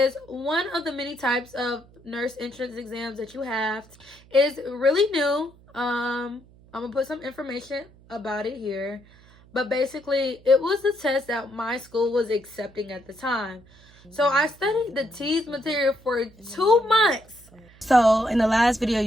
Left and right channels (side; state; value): right; noise; hum, 26 dB below the sound